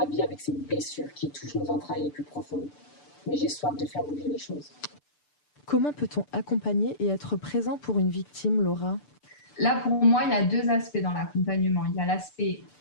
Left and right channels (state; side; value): late; right; 6.7 ms